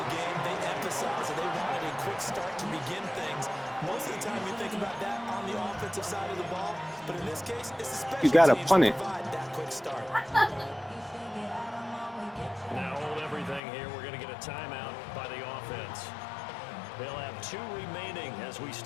game, they emphasized that they wanted a quick start to begin things. Most of the time you think about that on the offensive side of the ball, but in this case, it's the special You gotta teams punt that it. provide that quick start. Now hold everything here. We're going to get a timeout by the offense. They'll have 2 remaining as we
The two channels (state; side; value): drops out; right; at 13.6 s